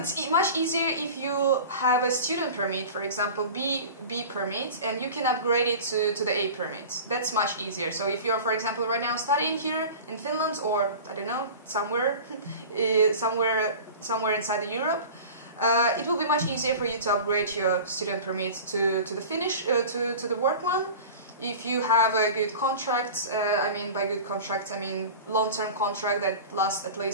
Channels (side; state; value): both; inverted; correlation -0.36